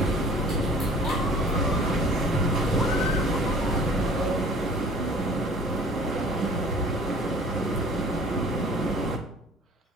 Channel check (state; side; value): normal; both; correlation 0.50